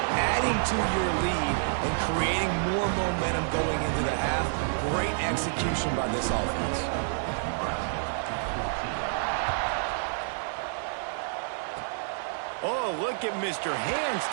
adding to your lead, and creating more momentum going into the half. Great execution by this offense. Oh, look at Mr. Hands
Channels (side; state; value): left; silent; digital silence